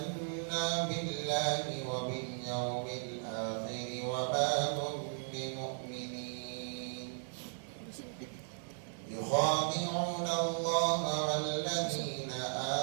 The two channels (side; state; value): left; silent; digital silence